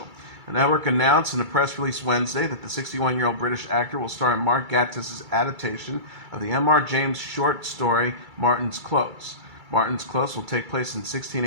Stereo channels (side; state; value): left; late; 2.3 ms